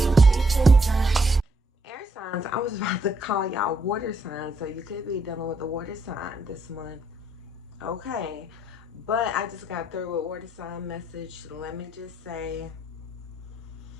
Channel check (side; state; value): both; normal; correlation 0.73